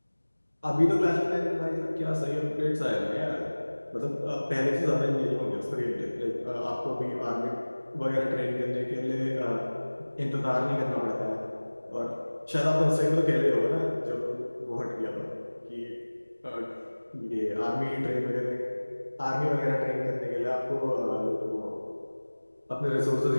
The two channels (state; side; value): inverted; both; correlation -1.00